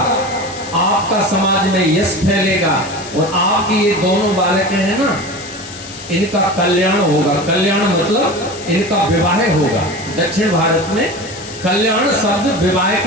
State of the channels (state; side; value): noise; left; hiss, 14 dB below the sound